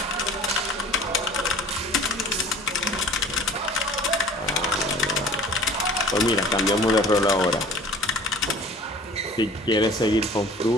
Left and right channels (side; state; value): both; normal; correlation 0.46